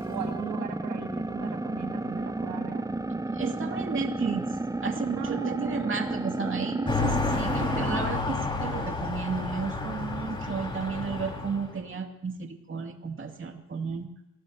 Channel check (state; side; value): normal; both; correlation 0.57